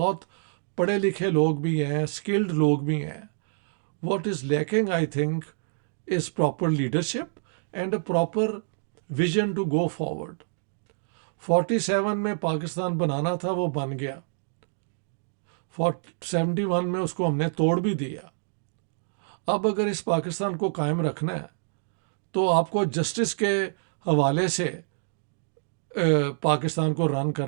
پڑھے لکھے لوگ بھی ہیں, اسکلڈ لوگ بھی ہیں. What is lacking I think is proper leadership and a proper vision to go forward. 47 میں پاکستان بنانا تھا, وہ بن گیا. 71 میں اس کو ہم نے توڑ بھی دیا. اب اگر اس پاکستان کو قائم رکھنا ہے تو آپ کو جسٹس کے حوالے سے پاکستان کو رن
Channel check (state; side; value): silent; left; digital silence